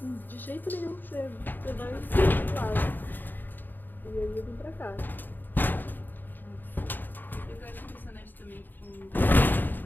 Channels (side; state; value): right; late; 0.091 ms